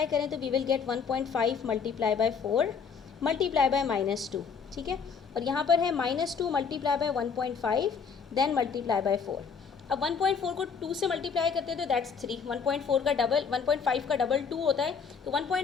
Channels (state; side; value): quieter; right; 6.0 dB